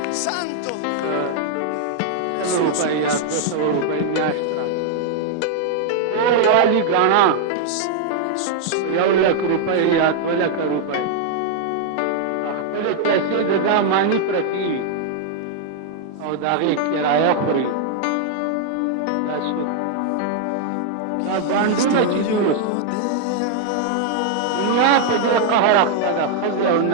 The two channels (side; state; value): both; different; correlation 0.00